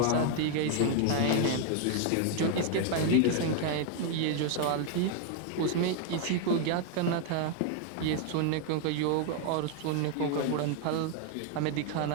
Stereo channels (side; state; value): both; different; correlation 0.00